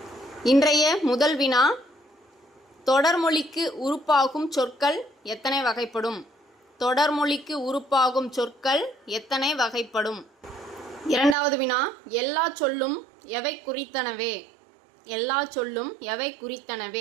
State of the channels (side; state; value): left; drops out; at 11.4 s